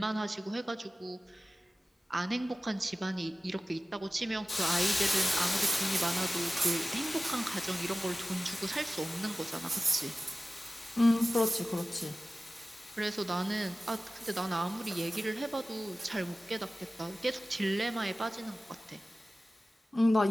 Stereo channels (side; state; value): both; normal; correlation 0.96